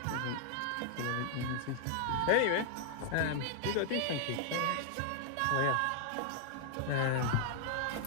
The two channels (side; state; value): both; different; correlation 0.00